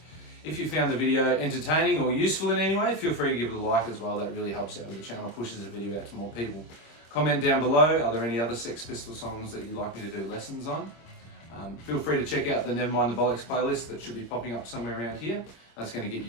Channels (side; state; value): right; late; 26 ms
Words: If you found the video entertaining or useful in any way, feel free to give it a like as well. That really helps out with the channel, pushes the video out to more people. Comment down below, are there any other Sex Pistols songs that you'd like me to do lessons on? Feel free to check out the Nevermind the Bollocks playlist that should be popping up somewhere around here. That's going to get